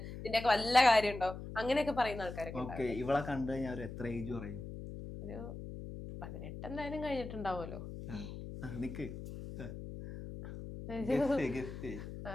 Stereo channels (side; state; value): left; noise; hum, 9 dB below the sound